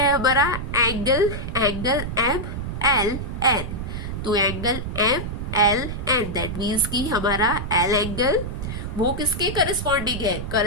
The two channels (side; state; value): right; noise; rumble, 5 dB below the sound